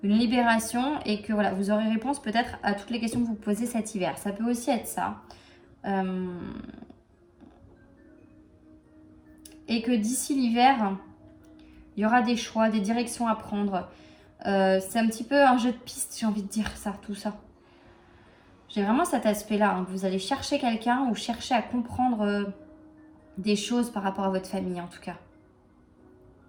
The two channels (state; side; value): identical; both; correlation 1.00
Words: libération. Et que voilà, vous aurez réponse peut-être à toutes les questions que vous posez cet hiver. Ça peut aussi être ça. Et que d'ici l'hiver, il y aura des choix, des directions à prendre. C'est un petit peu un jeu de piste, j'ai envie de dire ça, tout ça. J'ai vraiment cet aspect-là, hein, que vous allez chercher quelqu'un ou chercher à comprendre des choses par rapport à votre famille, en tout cas.